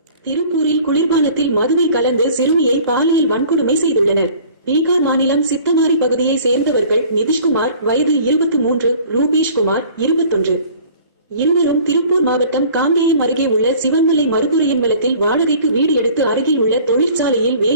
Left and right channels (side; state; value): both; inverted; correlation -0.49